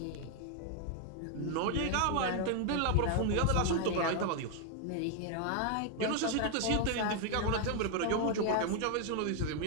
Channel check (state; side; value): different; both; correlation 0.00